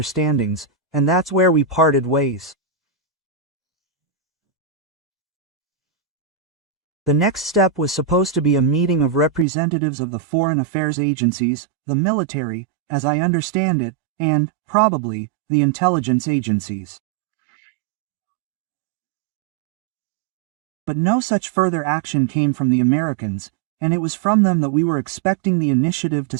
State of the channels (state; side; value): drops out; left; at 9.5 s